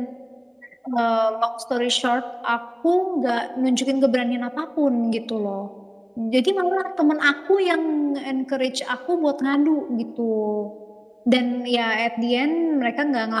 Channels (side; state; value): both; identical; correlation 1.00